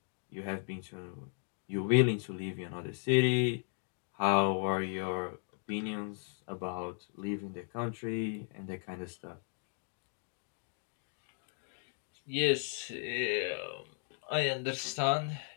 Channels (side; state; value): right; silent; 54 dB below the other